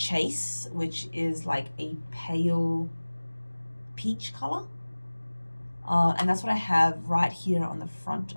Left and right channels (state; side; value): inverted; both; correlation -1.00